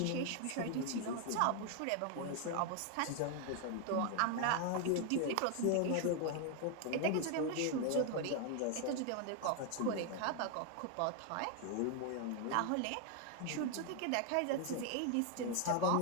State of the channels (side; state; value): both; different; correlation 0.00